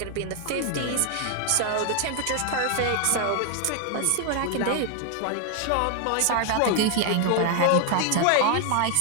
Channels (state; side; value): different; both; correlation 0.00